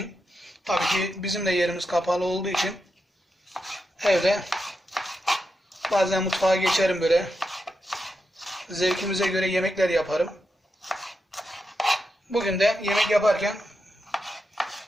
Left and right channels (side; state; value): both; normal; correlation 0.86